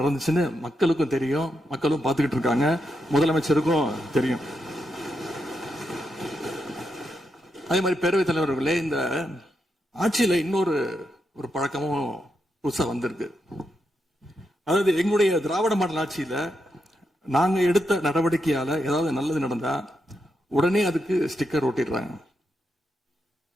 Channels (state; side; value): normal; both; correlation 0.83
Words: மக்களுக்கும் தெரியும், மக்களும் பார்த்துக்கிட்டு இருக்காங்க, முதலமைச்சருக்கும் தெரியும். அதே மாதிரி பேரவைத் தலைவர்களே, இந்த ஆட்சியில இன்னொரு பழக்கமும் புதுசா வந்திருக்கு. அதாவது எங்களுடைய திராவிட மாடல் ஆட்சியில நாங்க எடுத்த நடவடிக்கையால ஏதாவது நல்லது நடந்தா உடனே அதுக்கு ஸ்டிக்கர் ஒட்டிடுறாங்க.